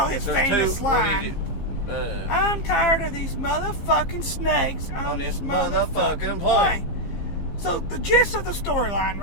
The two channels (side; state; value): right; late; 15 ms